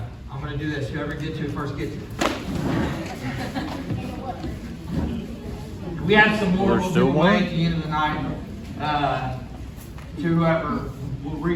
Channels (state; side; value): identical; both; correlation 1.00